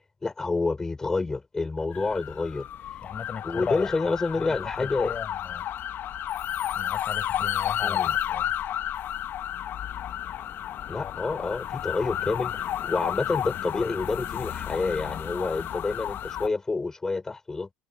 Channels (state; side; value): quieter; right; 5.2 dB